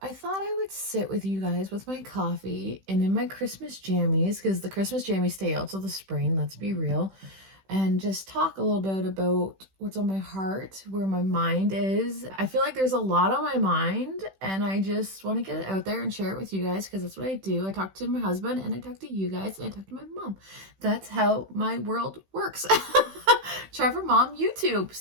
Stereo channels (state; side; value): late; left; 16 ms